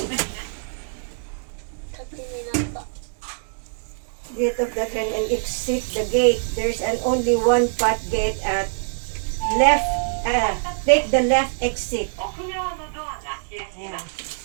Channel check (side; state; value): left; silent; digital silence